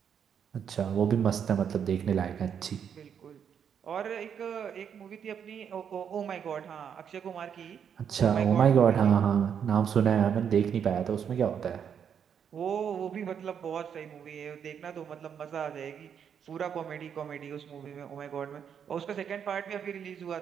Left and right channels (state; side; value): quieter; left; 7.9 dB